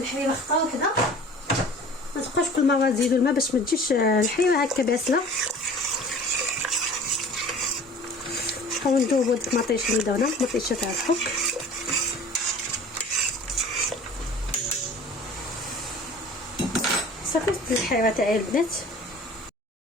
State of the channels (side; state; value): both; normal; correlation 0.44